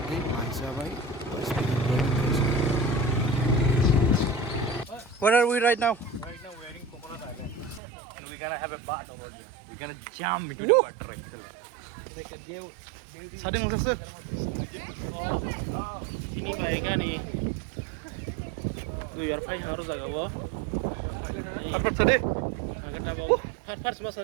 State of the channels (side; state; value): left; drops out; at 7.8 s